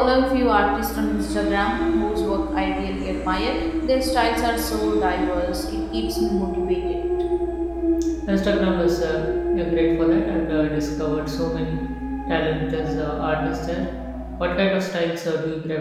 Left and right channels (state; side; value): identical; both; correlation 1.00